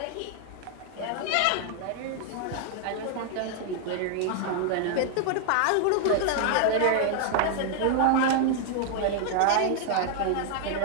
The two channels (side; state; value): both; different; correlation 0.00